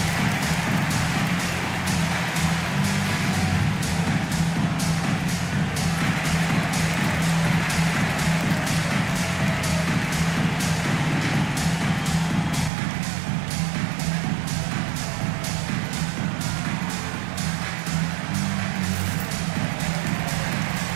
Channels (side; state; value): left; drops out; at 12.7 s